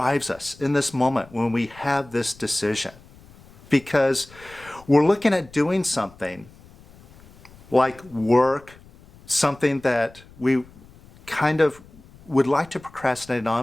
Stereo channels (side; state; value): left; noise; rumble, 24 dB below the sound